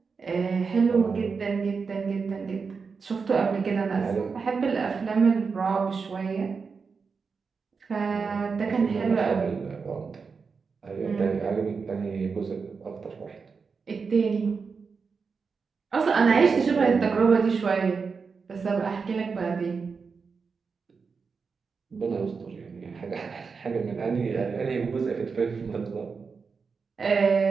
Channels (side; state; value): left; quieter; 5.2 dB